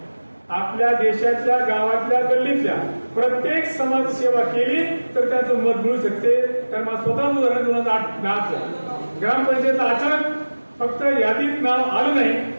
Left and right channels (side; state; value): both; inverted; correlation -1.00